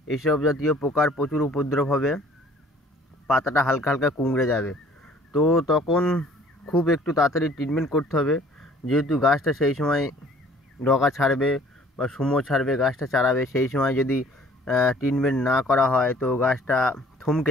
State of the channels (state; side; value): normal; both; correlation 0.55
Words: এইসব জাতীয় পোকার প্রচুর উপদ্রব হবে, পাতাটা হালকা হালকা কুঁকড়ে যাবে। তো তখন খুব একটু তাড়াতাড়ি ট্রিটমেন্ট করতে হবে, যেহেতু গাছটা সেই সময় ডগা ছাড়বে বা সুমো ছাড়বে, গাছটা চারাবে। সেই সময় যদি ট্রিটমেন্ট না করা হয় তো গাছটা থমকে